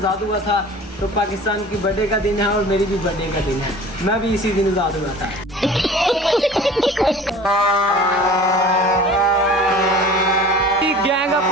हुआ था। तो पाकिस्तान की बर्थडे का दिन है और मेरी भी बर्थडे का दिन है। मैं भी इसी दिन आज़ाद हुआ था। गैंग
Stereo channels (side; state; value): both; normal; correlation 0.42